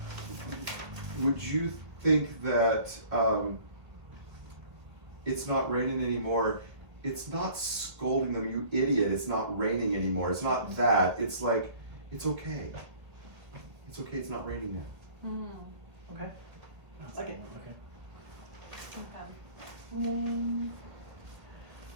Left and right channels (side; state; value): left; late; 1.5 ms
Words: would you think that it's not raining anymore? It's not scolding them, you idiot. It's not raining anymore. It's not that. It's like it's okay. It's okay. It's not raining now. Okay. I like it.